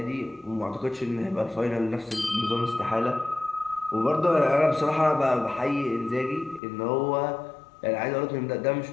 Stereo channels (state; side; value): drops out; right; at 6.6 s